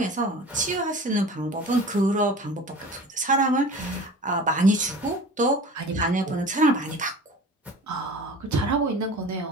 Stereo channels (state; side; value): normal; both; correlation 0.39